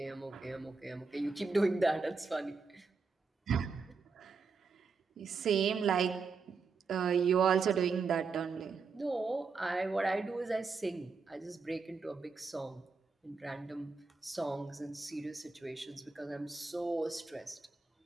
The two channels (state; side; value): quieter; left; 4.7 dB